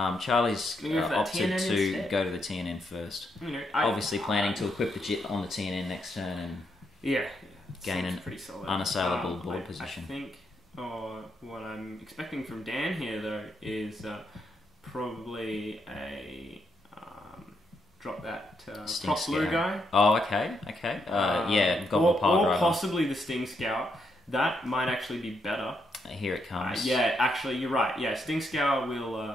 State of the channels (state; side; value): normal; both; correlation 0.78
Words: Charlie's opted to go to the TNN first. Obviously planning to equip the Jit on the TNN next turn. And yeah. gain an pretty solid. unassailable board position. I think, what I'm expecting from Dan here though is probably a drop that Sting Prop Blue Scout. guy. Oh, okay. Yeah, Goblin Pile Driver. Or possibly the Sting Scout. That might actually be better. Here it comes. Yeah, actually, you're right. Yeah, Sting Scout